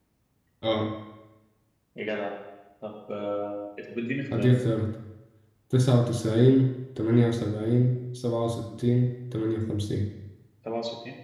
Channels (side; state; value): both; identical; correlation 1.00